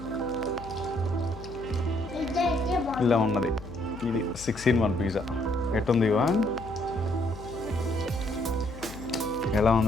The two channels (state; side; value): noise; left; hum, 15 dB below the sound